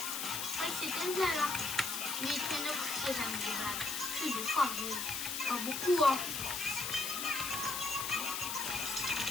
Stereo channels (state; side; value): noise; left; hiss, 2 dB below the sound